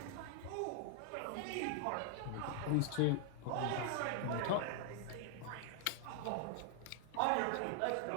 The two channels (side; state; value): both; different; correlation 0.00